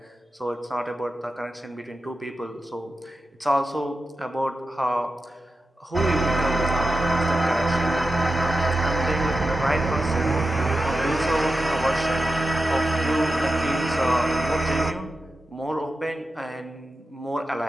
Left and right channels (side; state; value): both; normal; correlation 0.91